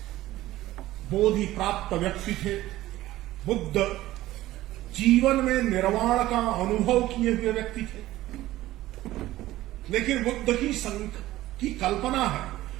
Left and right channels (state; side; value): quieter; left; 15.8 dB